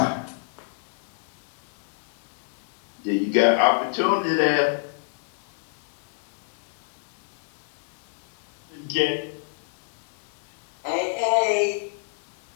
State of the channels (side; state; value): right; silent; digital silence